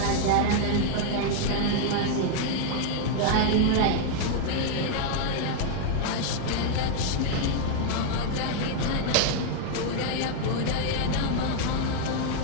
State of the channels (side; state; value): both; different; correlation 0.00